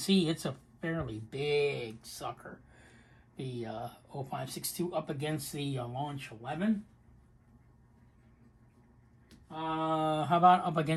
it's a fairly big sucker. The 0562 up against the Launch 11. How about up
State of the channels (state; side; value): identical; both; correlation 1.00